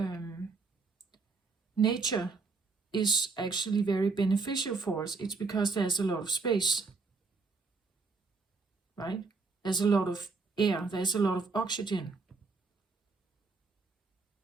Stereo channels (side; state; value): left; quieter; 4.2 dB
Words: nature is actually very beneficial for us. It's because there's a lot of space, right? There's a lot of air, there's a lot of oxygen.